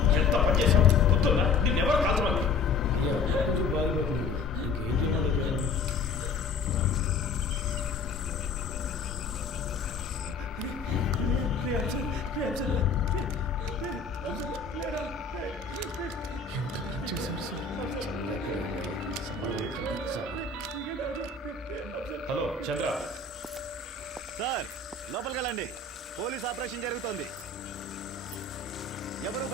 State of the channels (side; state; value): right; quieter; 4.5 dB